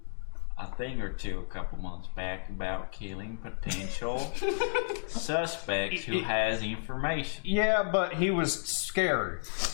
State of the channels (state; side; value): silent; right; digital silence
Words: a thing or two a couple months back about killing potential suspects who has information. Yeah, but he was scared.